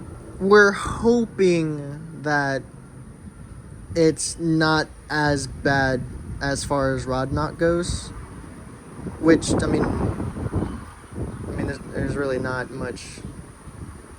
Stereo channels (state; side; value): identical; both; correlation 1.00